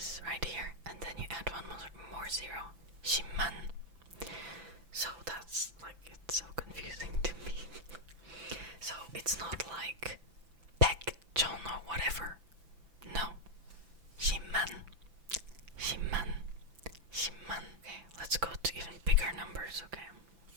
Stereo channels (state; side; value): late; left; 6.0 ms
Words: right here and then you add one more zero. 10만. So that's like, it's so confusing to me. So it's not like 백천 or whatever. No. 10만. Okay, let's go to even bigger numbers, okay?